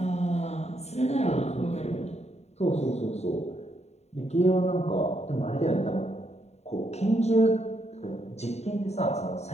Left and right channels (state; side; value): late; right; 0.32 ms